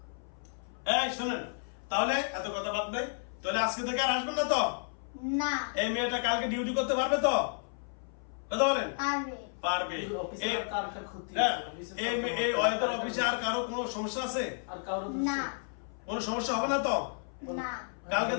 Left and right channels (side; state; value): right; silent; 56 dB below the other